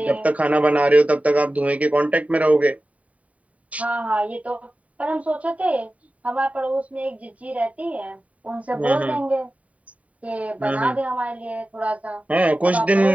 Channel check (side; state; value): left; late; 0.068 ms